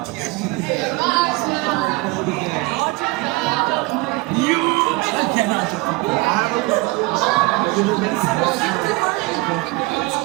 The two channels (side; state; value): left; quieter; 23.6 dB